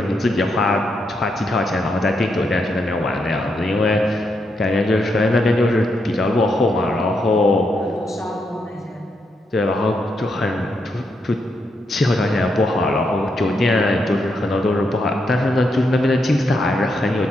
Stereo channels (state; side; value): normal; both; correlation 0.81